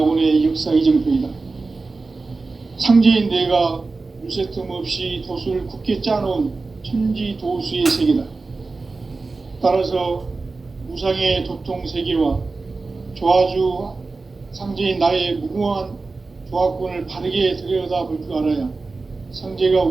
역사 이정표이다. 상제인 내가 물새 틈 없이 도수를 굳게 짜놓은 천지 도수의 세계다. 따라서 무상의 도통 세계와 조화주 상제인 나의 무궁한 조화권을 바르게 들여다볼 줄 알아야 상제가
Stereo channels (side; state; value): left; quieter; 3.8 dB